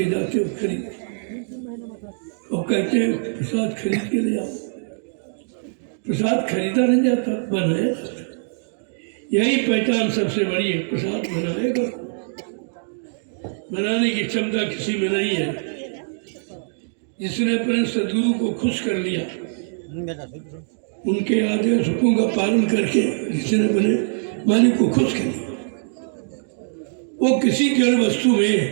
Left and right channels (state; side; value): silent; left; digital silence